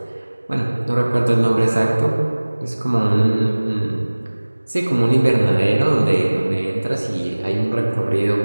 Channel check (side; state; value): both; inverted; correlation -1.00